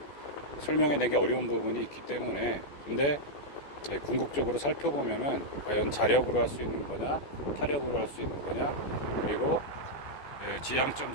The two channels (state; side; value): late; right; 14 ms